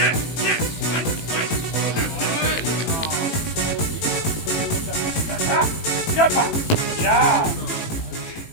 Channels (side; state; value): right; late; 18 ms